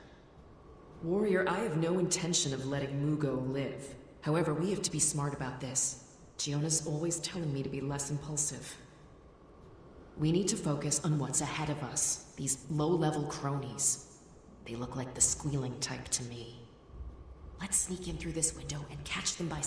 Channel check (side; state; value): both; identical; correlation 1.00